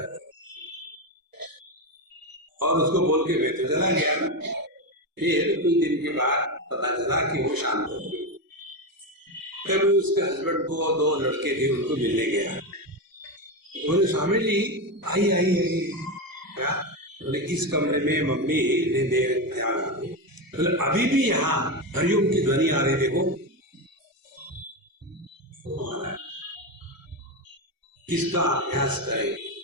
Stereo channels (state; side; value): late; left; 1.0 ms